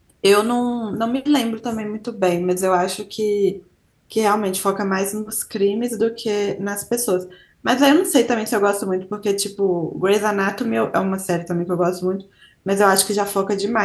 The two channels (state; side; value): identical; both; correlation 1.00